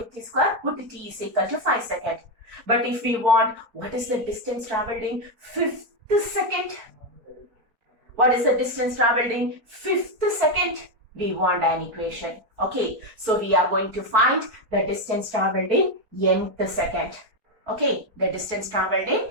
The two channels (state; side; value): late; left; 4.4 ms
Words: square, put T is equal to 5 seconds. But if we want, what is the distance traveled in 5th second? What is the distance traveled in 5th second? We want an equation. Okay, so we are going to find the distance traveled in nth second. Okay, the distance traveled